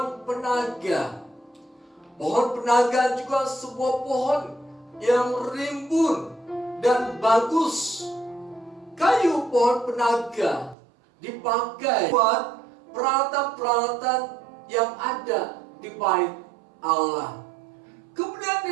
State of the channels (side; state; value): left; drops out; at 10.8 s